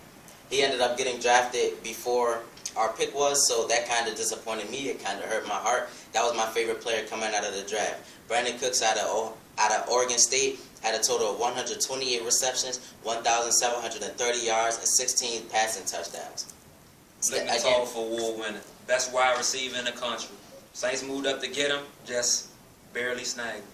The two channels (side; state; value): both; identical; correlation 1.00